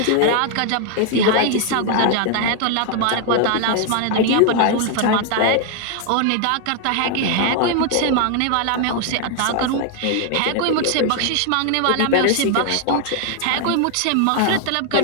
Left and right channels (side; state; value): both; different; correlation 0.00